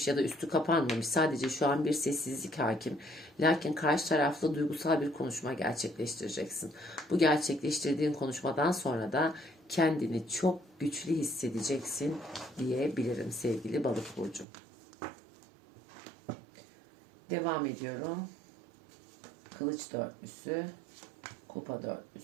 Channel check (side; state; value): left; drops out; at 14.5 s